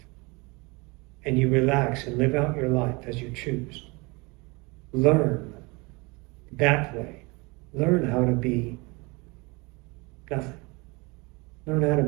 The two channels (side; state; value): left; quieter; 26.5 dB